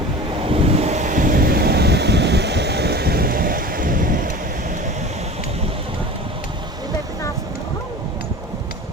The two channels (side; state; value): both; normal; correlation 0.36